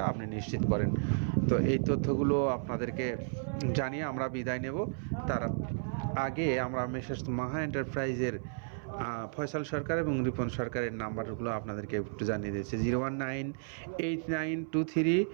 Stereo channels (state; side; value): silent; left; 56 dB below the other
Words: আপনি নিশ্চিত করেন। তো এই তথ্যগুলো আপনাদেরকে জানিয়ে আমরা বিদায় নেব। তার আগে আমরা মেসেজ মাহা এন্টারপ্রাইজের ফয়সাল সরকার এবং রিপন সরকারের নাম্বারগুলো আপনাদেরকে একটু জানিয়ে দিয়েছে।